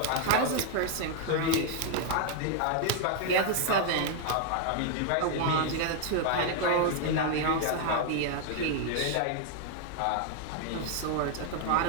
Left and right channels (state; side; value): different; both; correlation 0.00